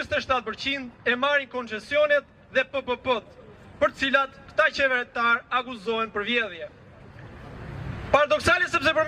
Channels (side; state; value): both; identical; correlation 1.00